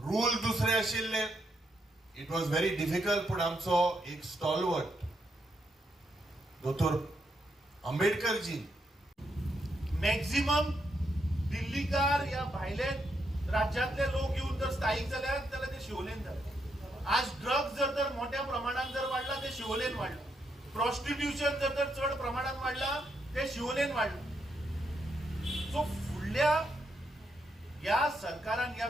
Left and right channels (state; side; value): normal; both; correlation 0.79